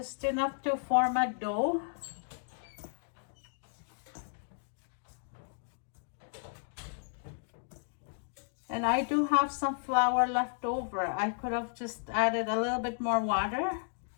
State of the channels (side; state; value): right; silent; digital silence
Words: enough to form a dough. And I do have some flour left over. I could have just added a little bit more water.